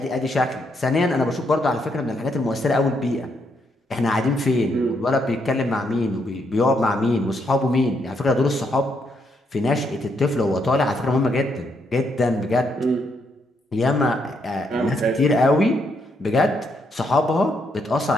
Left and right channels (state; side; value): normal; both; correlation 0.76